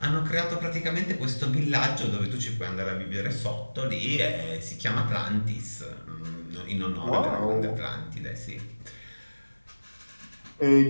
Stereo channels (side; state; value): both; inverted; correlation -1.00